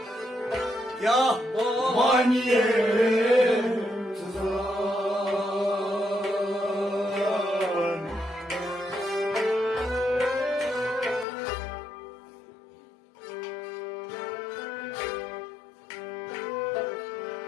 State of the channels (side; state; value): right; drops out; at 11.2 s